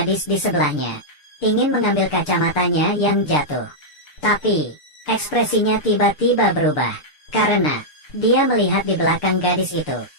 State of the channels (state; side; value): late; right; 6.7 ms